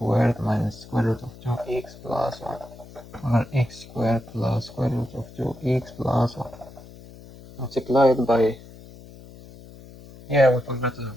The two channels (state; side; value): noise; left; hum, 19 dB below the sound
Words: minus square root of 2x plus 1 over x squared plus square root of 2x plus 1 multiplied by, yeah, we forgot